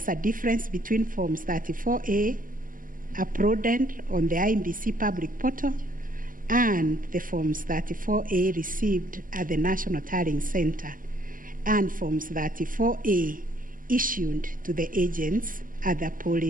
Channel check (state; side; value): late; left; 0.40 ms